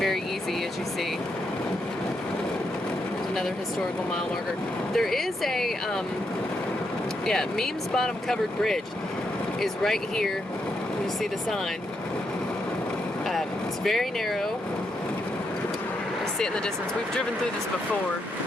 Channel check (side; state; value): both; normal; correlation 0.80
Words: easy, as you see. Another historical mile marker. There is a, Memes Bottom Covered Bridge is right here. You see the sign. It's very narrow. You see it in the distance. We've driven through this before.